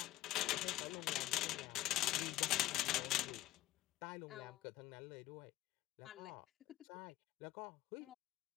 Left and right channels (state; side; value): quieter; right; 16.3 dB